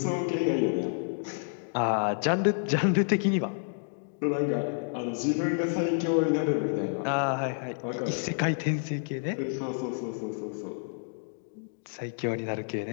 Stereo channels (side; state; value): right; silent; digital silence